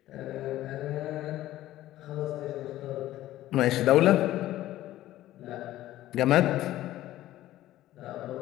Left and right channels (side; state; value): right; quieter; 14.6 dB